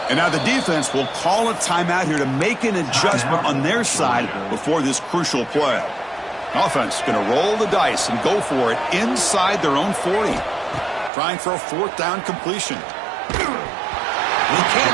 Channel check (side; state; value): left; drops out; at 11.1 s